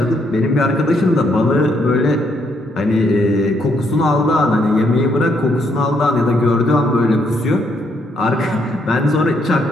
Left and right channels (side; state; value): both; normal; correlation 0.73